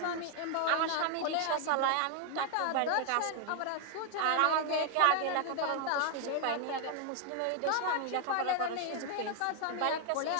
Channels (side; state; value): both; different; correlation 0.00